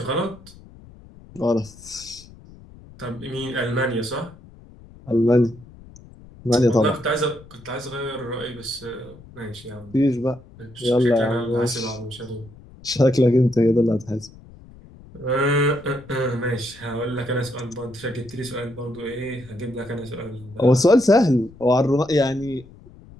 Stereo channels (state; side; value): noise; left; rumble, 21 dB below the sound